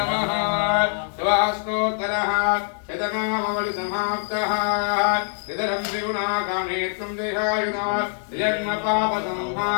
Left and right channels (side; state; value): right; silent; digital silence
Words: शिवास्तोत्रः शतनामवलि समाप्तः इदरं त्रिगुणाकामेत्वं देहायुधा जन्म पाप